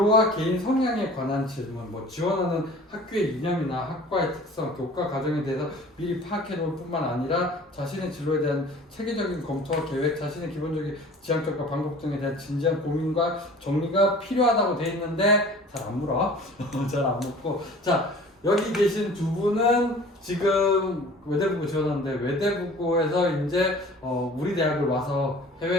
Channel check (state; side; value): normal; both; correlation 0.46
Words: 개인 성향에 관한 질문, 뭐 지원하는 학교의 이념이나 학과의 특성, 교과 과정에 대해서 미리 파악해 놓을 뿐만 아니라 자신의 진로에 대한 체계적인 검토와 계획, 자신의 기본적인 지향점과 방법 등에 대한 진지한 고민과 정리가 필요하다고 돼 있는데 잘 안 물어. 잘 안 묻고. 자, 여기 계신 두 분은 지금 외대부고 지원하는데 외대부고에서 이제 우리 대학을 와서